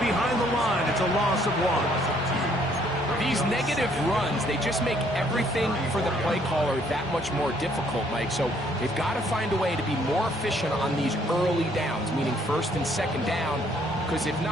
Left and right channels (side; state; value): both; normal; correlation 0.65